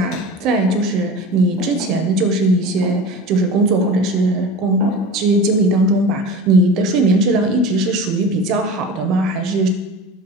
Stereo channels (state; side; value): normal; both; correlation 0.34